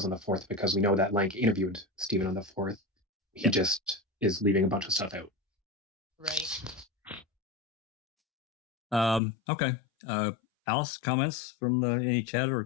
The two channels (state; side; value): drops out; right; at 9.2 s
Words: on the 4th because we know that Lank interviewed Stephen on the 4th. He just is leaving a bunch of stuff out. Right. Okay. Alice, comments from any chat or